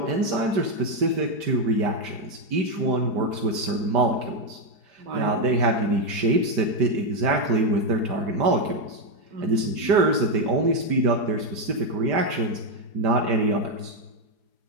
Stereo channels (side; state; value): left; late; 4.8 ms